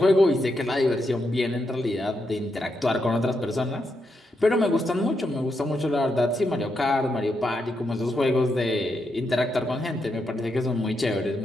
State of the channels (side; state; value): both; normal; correlation 0.83